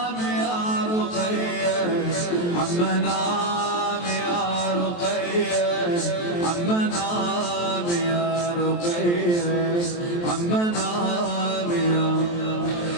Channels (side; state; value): right; late; 23 ms